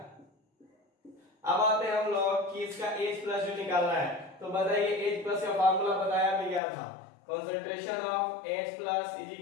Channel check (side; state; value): right; drops out; at 6.6 s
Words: अब आते हैं हम लोग कि इसका H प्लस जो निकालना है, तो बताइए H प्लस का फार्मूला बताया भी गया था, concentration of H plus is